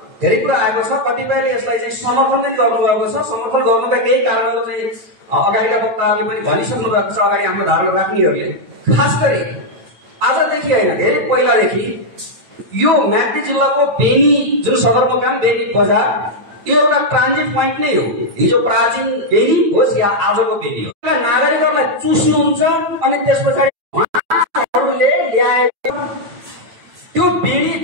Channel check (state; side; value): late; left; 8.9 ms